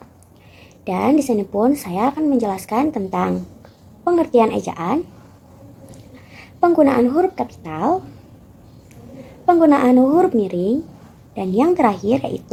Dan di sini pun saya akan menjelaskan tentang pengertian ejaan, penggunaan huruf kapital, penggunaan huruf miring, dan yang terakhir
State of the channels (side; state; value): both; identical; correlation 1.00